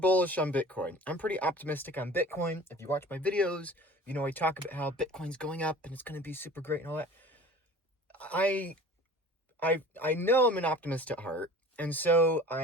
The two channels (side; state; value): both; normal; correlation 0.43